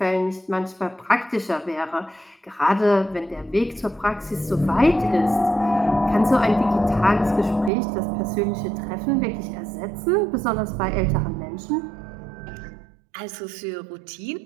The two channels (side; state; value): left; drops out; at 7.7 s